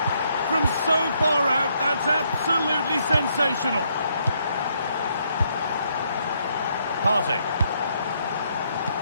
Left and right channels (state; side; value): inverted; both; correlation -0.73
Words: From so far out, that's absolutely sensational. Partey.